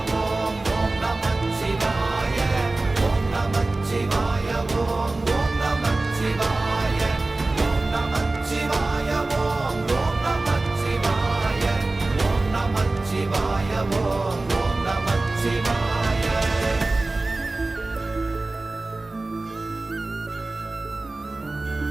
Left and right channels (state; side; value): quieter; left; 3.1 dB